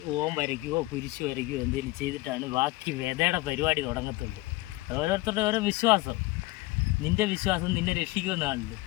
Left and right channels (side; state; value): right; quieter; 20.2 dB